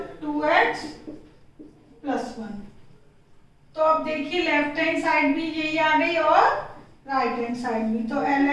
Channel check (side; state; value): both; identical; correlation 1.00